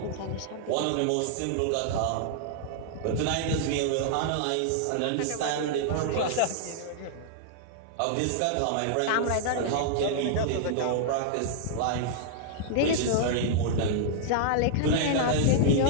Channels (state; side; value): different; both; correlation -0.01